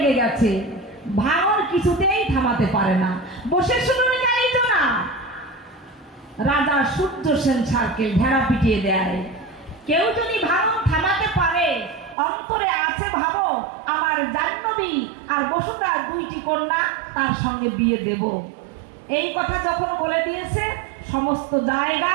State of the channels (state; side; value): drops out; left; at 12.2 s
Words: গেছে, ভাঙন কিছুতেই থামাতে পারে না। বসে শুনুন যাইতো না, রাজা সূর্য সেন সার্কেল ভেড়া পিটিয়ে দেয়। কেউ যদি ভাঙন থামাতে পারে, অন্তরে আছে ভাবো আমার জাহ্নবী আর বসুন্ধরা 2টি কন্যা, তার সঙ্গে বিয়ে দেব। এই কথা যখন বলে দিয়েছে, সমস্ত